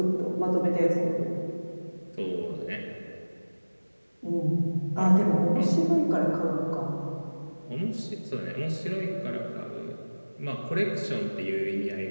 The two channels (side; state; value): both; inverted; correlation -1.00